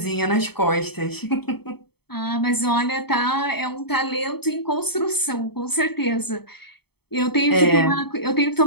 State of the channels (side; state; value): right; late; 0.97 ms